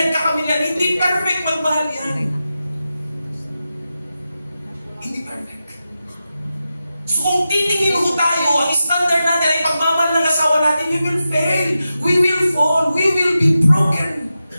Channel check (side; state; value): both; inverted; correlation -0.91